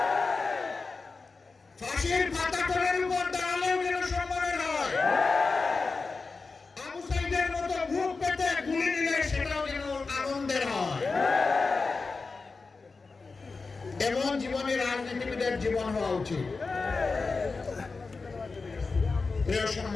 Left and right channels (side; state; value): right; quieter; 4.2 dB